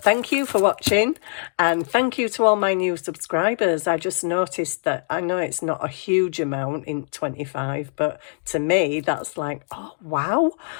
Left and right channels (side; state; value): right; silent; digital silence